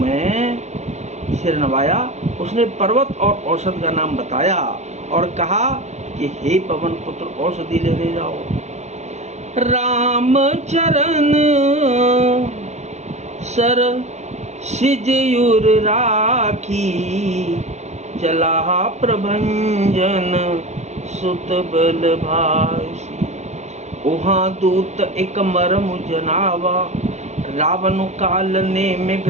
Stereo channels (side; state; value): left; late; 0.33 ms